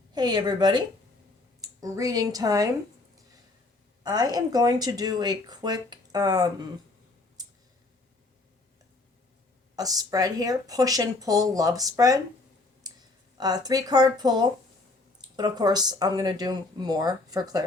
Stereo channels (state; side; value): quieter; right; 3.2 dB